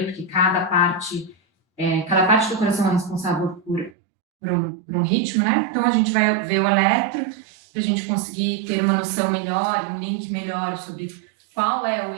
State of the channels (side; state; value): left; drops out; at 3.9 s